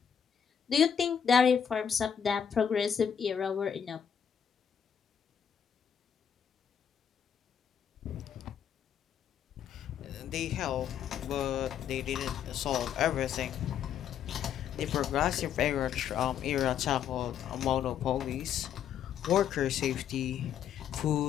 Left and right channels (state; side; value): quieter; right; 8.4 dB